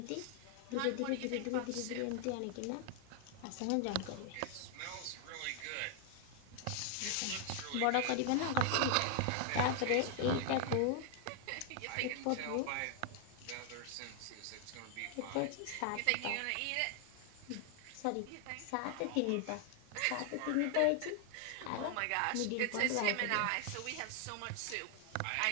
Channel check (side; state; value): both; different; correlation 0.00